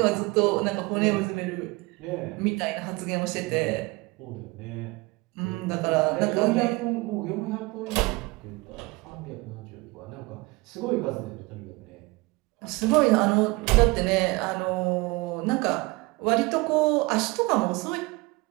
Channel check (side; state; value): left; quieter; 23.8 dB